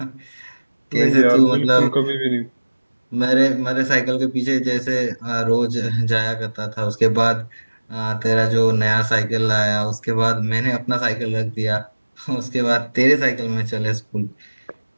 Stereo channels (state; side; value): inverted; both; correlation -1.00